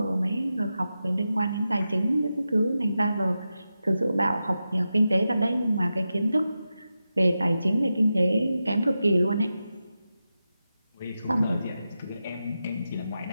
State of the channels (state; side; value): inverted; both; correlation -0.91